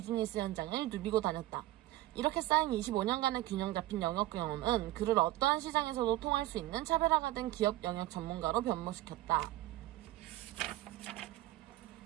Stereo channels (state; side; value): quieter; left; 16.5 dB